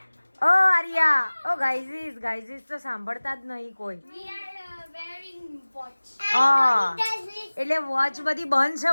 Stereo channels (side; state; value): both; inverted; correlation -1.00